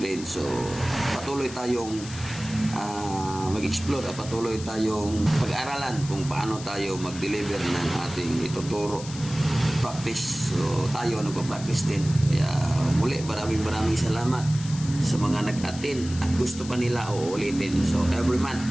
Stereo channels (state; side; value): noise; left; hiss, 14 dB below the sound